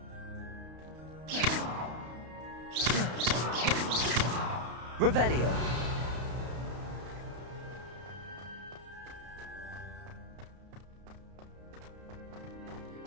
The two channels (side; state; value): left; late; 32 ms